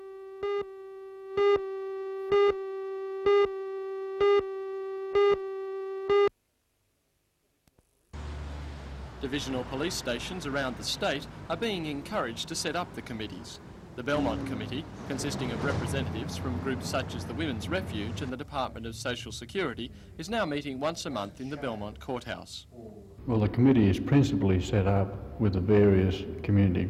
Divisional police stations around the state are being encouraged to set up the committees. The Belmont Committee, consisting of representatives from groups such as the Women's Refuge and the Department of Social Security, is now meeting once a month in the Belmont Courthouse. Well, the committee is principally set up with the various community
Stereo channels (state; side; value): identical; both; correlation 1.00